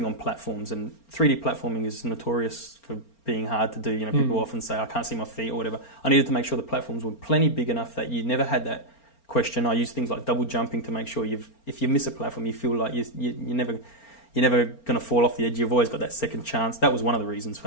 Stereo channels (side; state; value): right; late; 4.4 ms